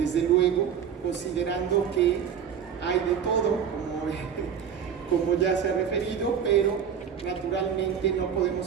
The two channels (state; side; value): quieter; left; 7.9 dB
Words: luego, considerando que hay de todo, como ya se ha referido, pero naturalmente no podemos